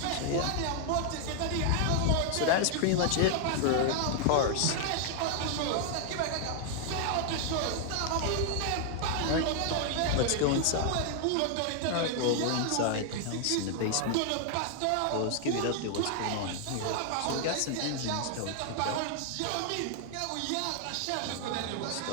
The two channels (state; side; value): different; both; correlation 0.00